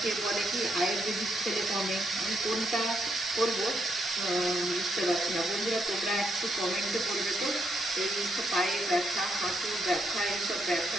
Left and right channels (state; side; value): normal; both; correlation 0.77